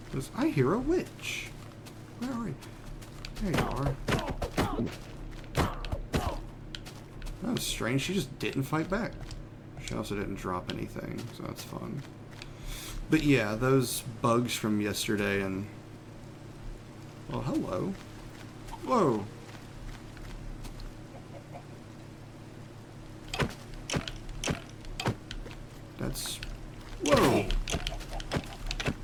I hear a witch. Where are you? There you are. That was strange. She just didn't fight back. She also didn't drop anything, so that's fun. But yeah, those bugs from yesterday and... Oh, hello. Whoa. That's... Whoa.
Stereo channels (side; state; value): both; identical; correlation 1.00